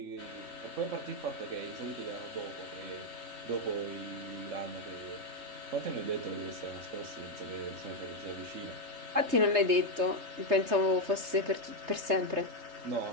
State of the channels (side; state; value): left; late; 3.3 ms